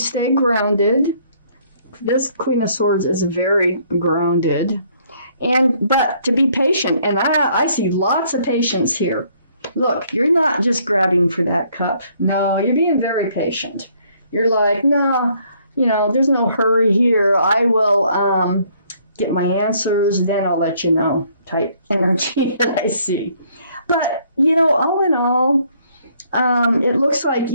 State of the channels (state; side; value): inverted; both; correlation -0.65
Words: grounded. This Queen of Swords is very grounded. But to be patient, and I see lots of patience here. Look, you're not just grabbing for that cup. No, you're being very patient. You're like, no, you know, there's no hurry here. I will get my answers, then I'll let you know type energy that I see. But, you know, all in all, it looks like,